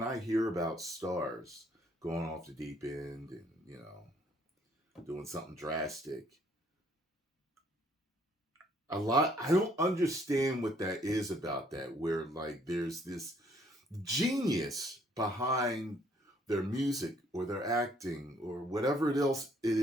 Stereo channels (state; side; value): normal; both; correlation 0.64